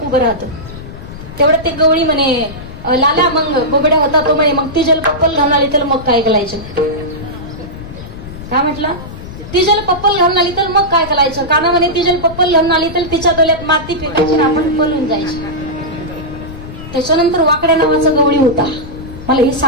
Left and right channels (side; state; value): left; noise; rumble, 13 dB below the sound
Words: उभं राहतं. तेवढं ते गवळी म्हणे लाला मग बोबड्या होता तो म्हणे मग ती जल पप्पल घालून आली तर मग काय करायचं? काय म्हटलं? ती जल पप्पल घालून आली तर मग काय करायचं? काना म्हणे ती जल पप्पल घालून आली तर तिच्या डोल्यात माती फेकायची आणि आपण पळून जायचं. त्याच्यानंतर वाकड्या नावाचा गवळी होता. मला हे